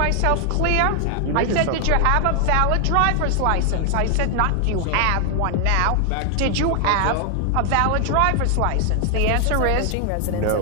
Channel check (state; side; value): different; both; correlation 0.00